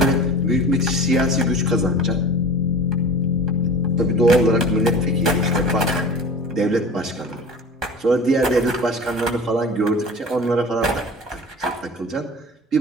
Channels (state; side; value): normal; both; correlation 0.38